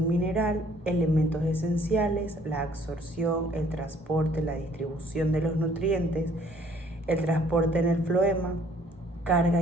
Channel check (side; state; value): both; normal; correlation 0.60